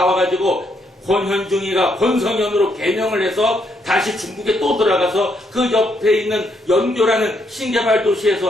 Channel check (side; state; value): both; normal; correlation 0.75